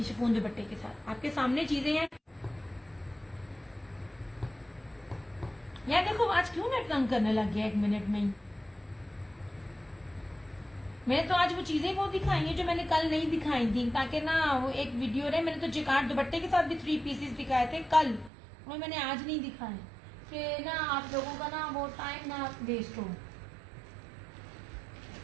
शिफॉन दुपट्टे के साथ आपके सामने चीजें हैं। यार देखो, आज क्यों नेट तंग करने लग गया 1 मिनट में ही। मैंने तो आज वो चीजें बहुत दिखाई हैं जो मैंने कल नहीं दिखाई थी, ताकि ना वो एक वीडियो रहे। मैंने तो जेकार्ड दुपट्टे के साथ भी 3 पीसेस दिखाए थे कल, वो मैंने आज नहीं दिखाए, कि ना आप लोगों का ना वो टाइम ना वेस्ट हो।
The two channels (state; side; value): drops out; left; at 18.3 s